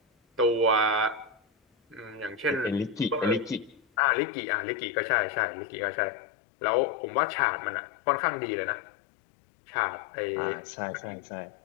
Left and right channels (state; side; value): drops out; right; at 3.8 s